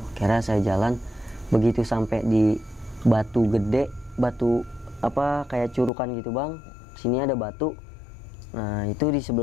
Kira saya jalan, begitu sampai di batu gede, batu kayak curukan gitu bang. Sini ada batu. Nah itu di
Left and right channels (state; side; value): drops out; right; at 5.9 s